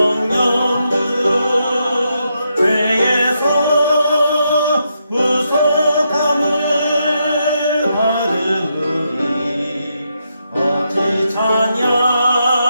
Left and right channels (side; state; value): both; inverted; correlation -0.81